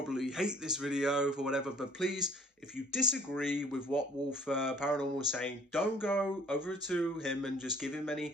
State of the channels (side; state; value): both; normal; correlation 0.55